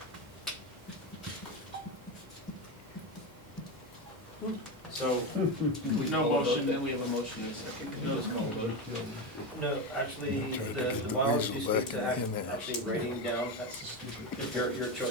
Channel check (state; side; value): noise; left; hum, 26 dB below the sound